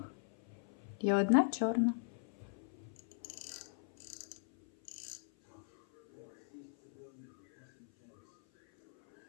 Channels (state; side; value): silent; right; 51 dB below the other